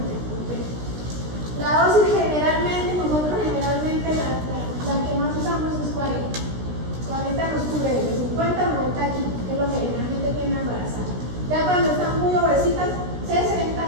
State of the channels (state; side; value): late; left; 16 ms